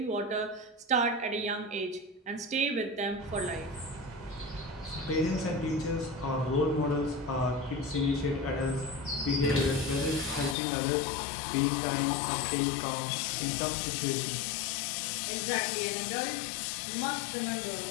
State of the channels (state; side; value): drops out; right; at 10.6 s